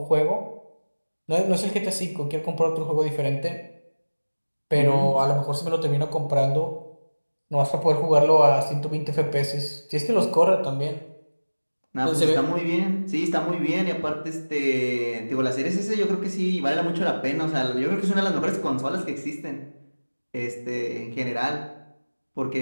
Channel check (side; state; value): both; inverted; correlation -1.00